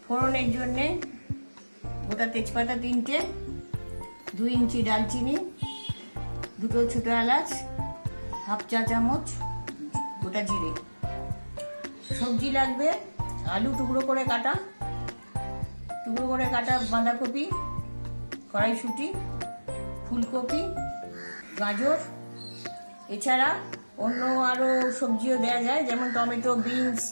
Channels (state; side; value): inverted; both; correlation -1.00